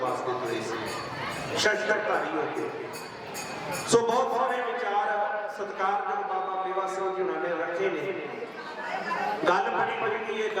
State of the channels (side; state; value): both; identical; correlation 1.00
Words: ਤੁਰੇ ਸੀ, ਸ਼ਸਤਰਧਾਰੀ ਹੋ ਕੇ। ਸੋ ਬਹੁਤ ਸਾਰੇ ਵਿਚਾਰ ਸਤਿਕਾਰਯੋਗ ਬਾਬਾ ਮੇਵਾ ਸਿੰਘ ਜੀ ਉਹਨਾਂ ਨੇ ਰੱਖੇ ਨੇ। ਗੱਲ ਬੜੀ ਵੱਡੀ ਹੈ,